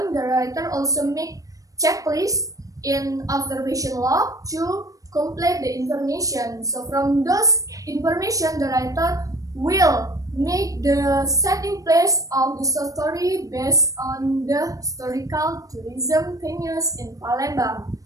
the writer also make checklist in observation log to complete the information. So from those information, the writer will make the setting place of the story based on the historical tourism venues in Palembang.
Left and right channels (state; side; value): late; left; 0.16 ms